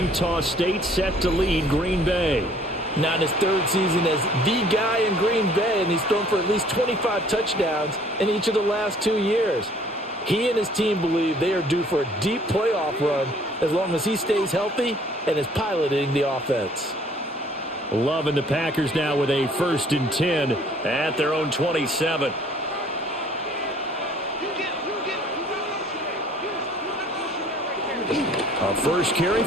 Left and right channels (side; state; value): both; normal; correlation 0.57